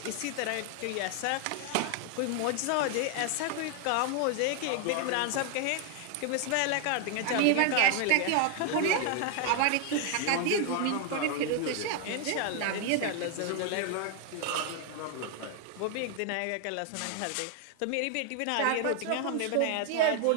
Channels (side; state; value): both; different; correlation 0.00